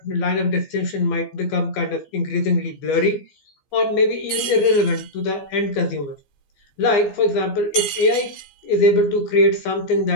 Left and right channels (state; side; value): late; right; 15 ms